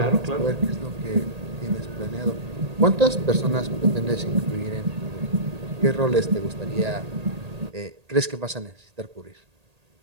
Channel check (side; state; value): left; late; 1.8 ms